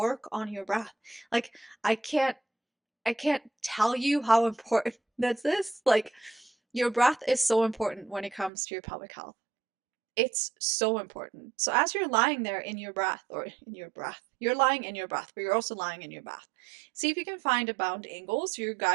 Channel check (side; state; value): left; drops out; at 8.5 s